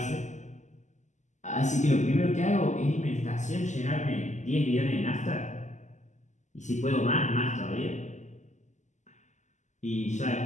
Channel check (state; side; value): late; right; 0.34 ms